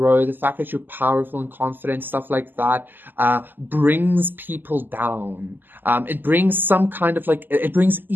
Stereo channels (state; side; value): late; left; 0.090 ms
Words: the fact that you're powerful and confident, stuff like that, brings people down. It brings some kind of like, it brings